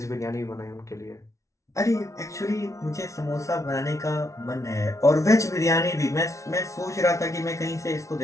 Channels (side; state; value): right; late; 0.15 ms